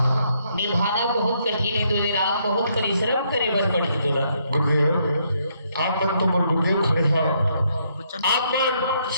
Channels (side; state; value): both; inverted; correlation -0.73